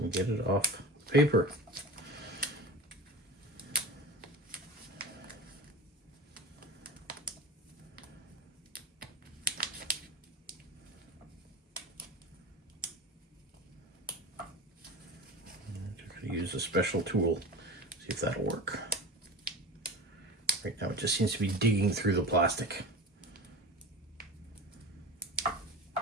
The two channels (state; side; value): normal; both; correlation 0.32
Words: get it off paper. Use a special tool, see if that'll work. Right now it just seems to be digging through the plastic.